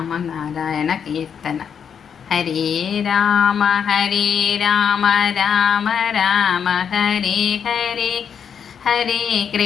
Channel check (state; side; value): quieter; right; 7.4 dB